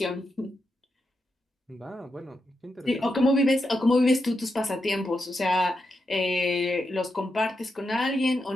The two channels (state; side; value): normal; both; correlation 0.86